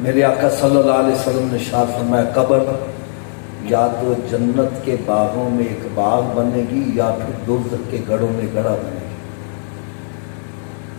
آقا صلی اللہ علیہ وسلم نے ارشاد فرمایا قبر یا تو جنت کے باغوں میں ایک باغ بنے گی یا پھر دوزخ کے گڑھوں میں گڑھا بنے گی۔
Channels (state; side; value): silent; right; digital silence